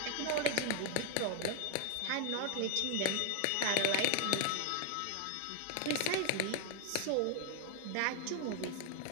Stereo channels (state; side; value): different; both; correlation 0.00